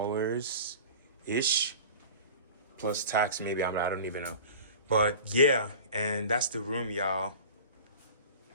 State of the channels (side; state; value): both; inverted; correlation -0.38